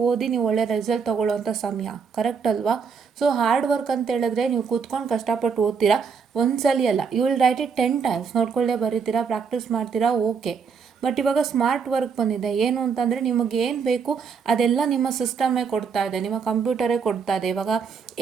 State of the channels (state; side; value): quieter; left; 6.0 dB